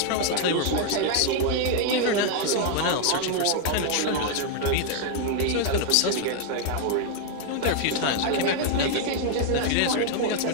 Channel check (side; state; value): both; different; correlation 0.00